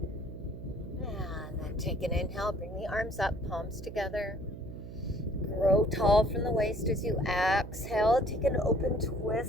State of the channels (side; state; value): right; noise; hum, 11 dB below the sound